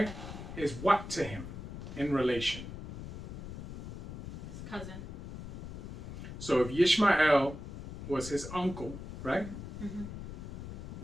is what to him in relation? His cousin. So if Ishmael was his uncle, right,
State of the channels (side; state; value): left; noise; rumble, 9 dB below the sound